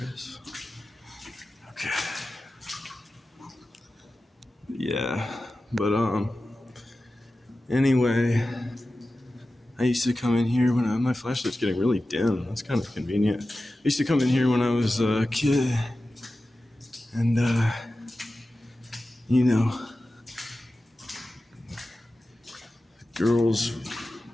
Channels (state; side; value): normal; both; correlation 0.94